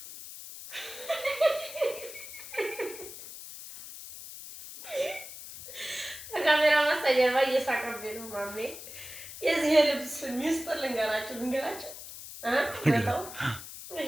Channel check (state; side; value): noise; left; hiss, 12 dB below the sound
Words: ካሜራ ማስተጀርባ እየሳቀብኝ ነው ማሜ። የዚህ ልብስ ሚስጥር ልንገራችሁ